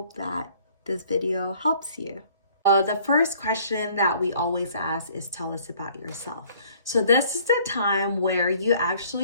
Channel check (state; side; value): inverted; both; correlation -0.57